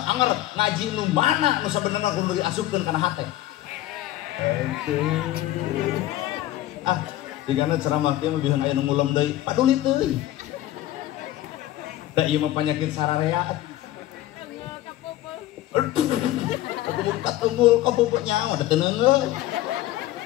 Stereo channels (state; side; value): quieter; right; 14.7 dB